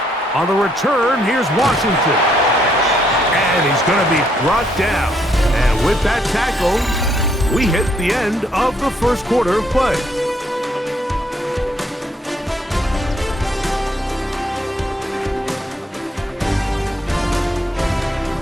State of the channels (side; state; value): both; normal; correlation 0.71